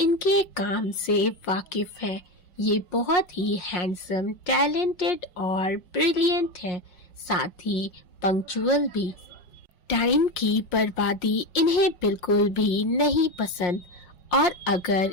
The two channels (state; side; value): late; right; 5.6 ms